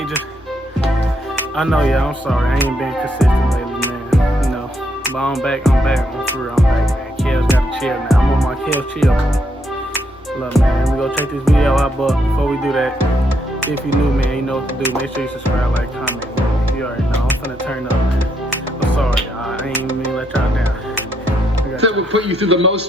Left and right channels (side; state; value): both; normal; correlation 0.76